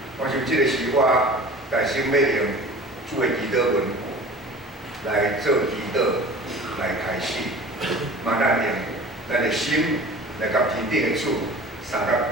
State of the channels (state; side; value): normal; both; correlation 0.41